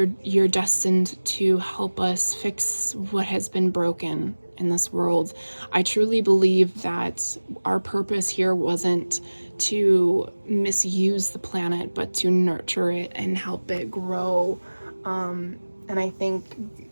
destined to help us fix what has been broken in this world. I truly believe that our purpose here wasn't to misuse the planet, but to nurture it and help it grow. And I think,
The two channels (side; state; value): both; inverted; correlation -1.00